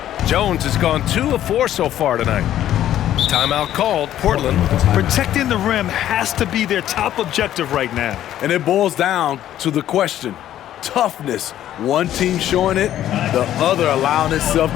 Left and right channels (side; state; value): right; quieter; 12.0 dB